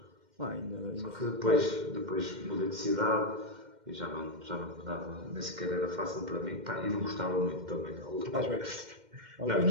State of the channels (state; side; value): late; left; 2.1 ms